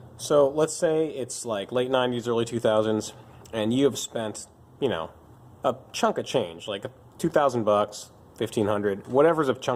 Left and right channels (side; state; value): both; identical; correlation 1.00